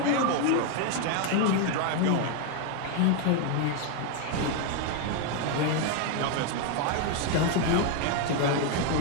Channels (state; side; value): different; both; correlation 0.01